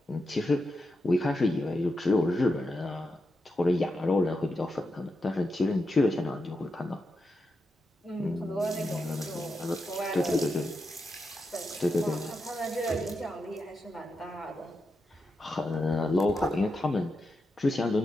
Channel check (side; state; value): both; normal; correlation 0.87